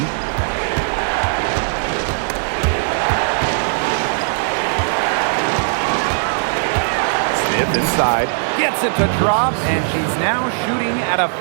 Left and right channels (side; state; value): left; silent; digital silence